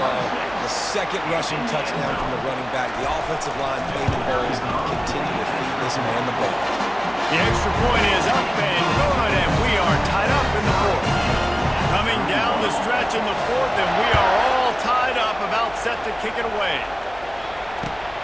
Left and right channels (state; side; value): noise; left; hum, 22 dB below the sound